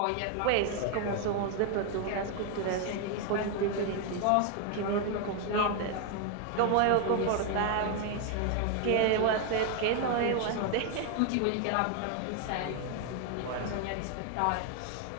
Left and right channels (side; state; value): both; different; correlation 0.00